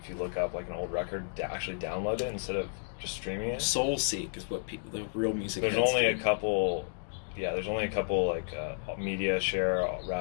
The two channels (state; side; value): silent; right; digital silence